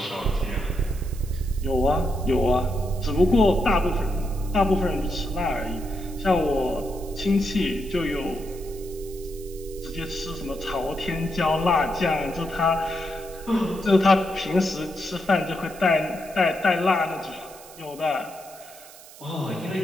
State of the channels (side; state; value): right; noise; hiss, 19 dB below the sound